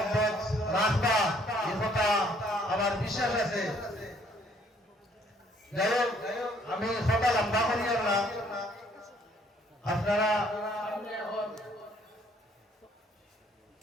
রাখবা, এই কথা আমার বিশ্বাস আছে। যাই হোক, আমি কথা লম্বা করি না, আপনারা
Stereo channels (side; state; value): both; normal; correlation 0.63